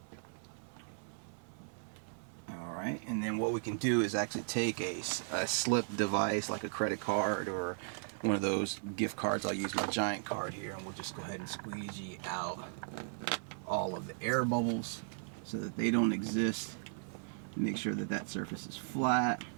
Alright, and then what we can do is actually take a slip device like a credit card or one of those gift cards. I'll use my giant card here, and we'll just go ahead and squeegee out all of the air bubbles so that they don't exist. Make sure that that surface is flat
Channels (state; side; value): silent; left; 53 dB below the other